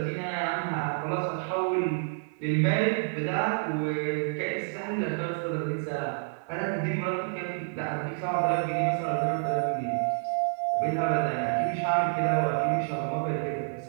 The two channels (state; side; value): silent; left; digital silence